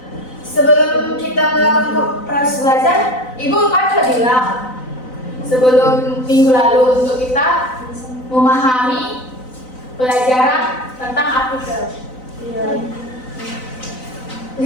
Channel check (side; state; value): right; late; 4.0 ms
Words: Sebelum kita melakukan proses belajar, Ibu kan sudah bilang sebelum minggu lalu untuk kita memahami pelajaran tentang artikel. Iya. Di